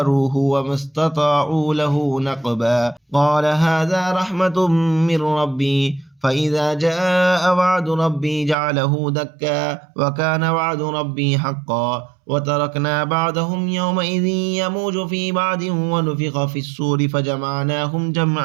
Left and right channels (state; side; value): drops out; left; at 8.6 s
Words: وما استطاعوا له نقبا قال هذا رحمة من ربي فإذا جاء وعد ربي جعله دكا وكان وعد ربي حقا وتركنا بعضهم يومئذ يموج في بعض ونفخ في الصور فجمعناهم